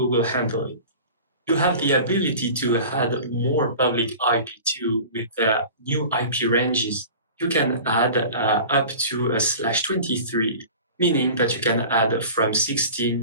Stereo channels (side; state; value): both; inverted; correlation -0.39